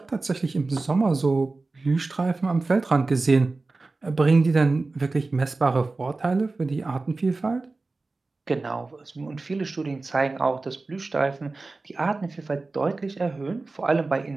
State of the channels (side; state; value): left; quieter; 3.5 dB